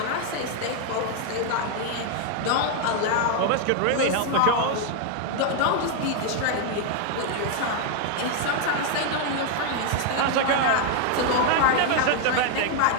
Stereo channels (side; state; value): both; different; correlation 0.00